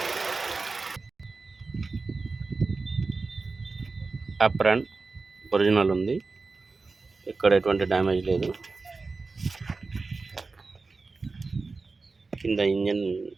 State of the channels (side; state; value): left; quieter; 4.0 dB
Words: అప్రాన్ ఒరిజినల్ ఉంది, ఇక్కడ ఎటువంటి డ్యామేజ్ లేదు. కింద ఇంజిన్